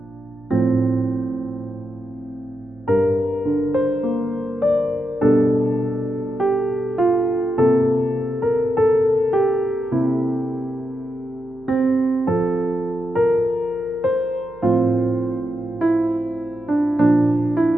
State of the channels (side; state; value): right; noise; hum, 27 dB below the sound